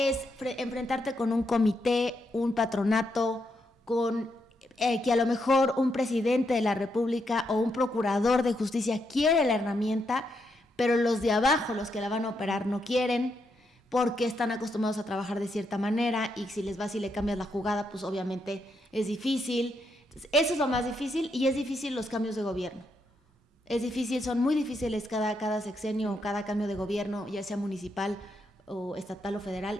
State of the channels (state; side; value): normal; both; correlation 0.80